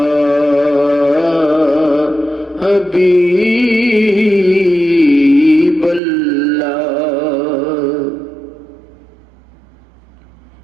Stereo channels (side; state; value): left; drops out; at 6.0 s